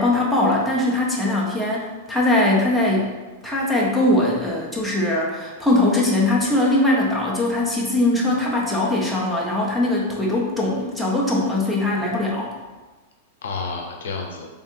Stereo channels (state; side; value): normal; both; correlation 0.24